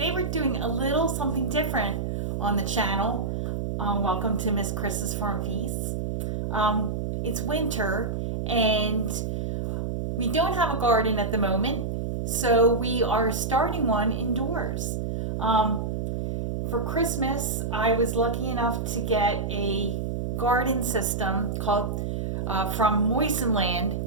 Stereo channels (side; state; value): right; noise; hum, 2 dB below the sound